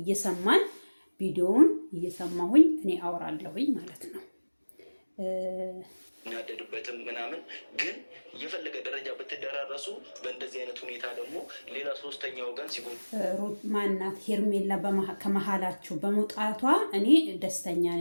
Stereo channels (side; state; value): both; inverted; correlation -1.00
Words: ቪዲዮውን እየሰማሁኝ እኔ አወራለሁኝ ማለት ነው። እናደድበትም ምናምን ግን የፈለገ ደረጃ ብትደራረሱ በእንደዚህ አይነት ሁኔታ ደግሞ ሌላ ሶስተኛ ወገን ሲሆን ማናት ሄርሜላ ከመሀላችሁ በመውጣቷ እኔ ደስተኛ